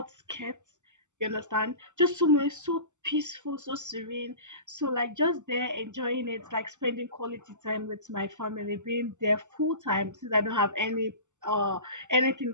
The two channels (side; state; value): left; late; 0.85 ms